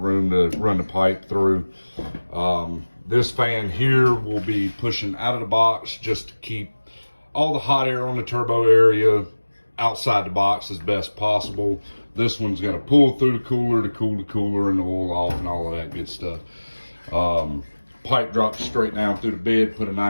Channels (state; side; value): inverted; both; correlation -1.00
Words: to run the pipe through. This fan here will be pushing out of the box just to keep all the hot air on the turbo area outside the box as best possible. This one's gonna pull through the cooler to cool the cooler and the oil off and all of that good stuff. Pipe drops straight down through the bed, put a